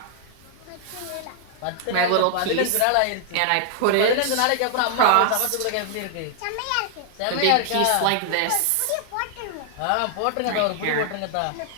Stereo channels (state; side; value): different; both; correlation 0.00